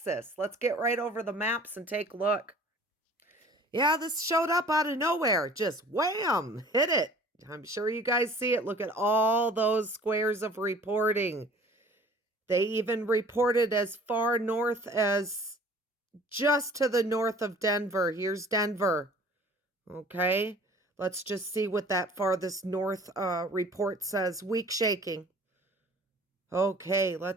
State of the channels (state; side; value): normal; both; correlation 0.49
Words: Let's get right over the maps and take a look. Yeah, this showed up out of nowhere. Just wham, hit it. I'm sure you guys see it. Look at all those squares of reporting. They even reported as far north as just to the north of Denver. Here's Denver. Okay, let's just see what that farthest north report says. Weak shaking. Okay,